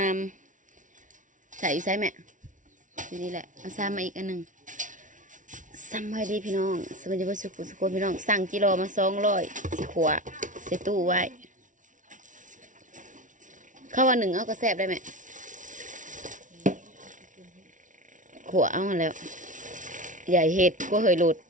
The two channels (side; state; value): left; late; 0.37 ms